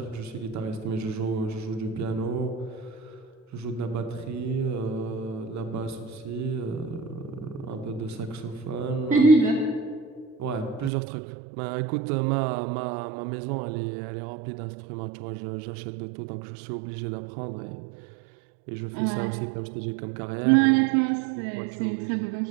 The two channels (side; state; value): left; drops out; at 10.9 s